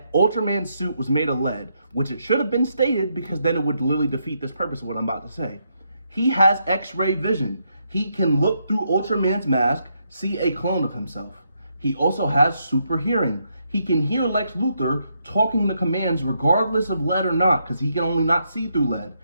Ultraman's suit was made of lead, which it should have been stated because then it would literally defeat this purpose of what I'm about to say. He has X-ray vision. He can look through Ultraman's mask, see a clone of himself. He also has super hearing. He can hear Lex Luthor talking the commands regardless of lead or not, because he can only not see through lead.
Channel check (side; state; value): both; inverted; correlation -0.78